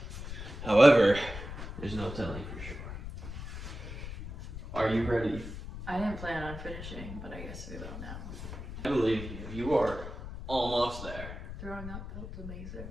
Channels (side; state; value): left; noise; rumble, 9 dB below the sound